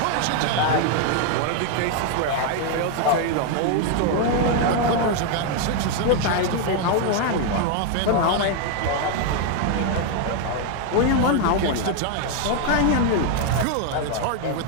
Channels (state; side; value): different; both; correlation 0.00